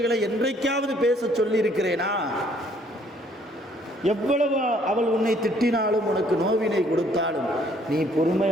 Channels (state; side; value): normal; both; correlation 0.63